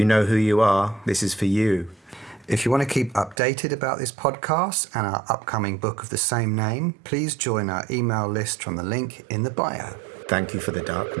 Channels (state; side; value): drops out; left; at 3.4 s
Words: know who you are. This is for you. If you want to keep updated about this podcast and our upcoming book of the same name, please join our email list from the link in the bio. Thank you for the